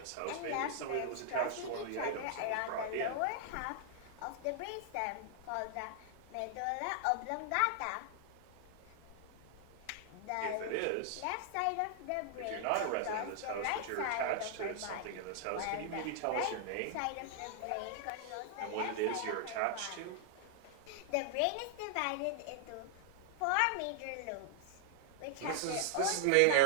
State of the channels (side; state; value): both; different; correlation 0.00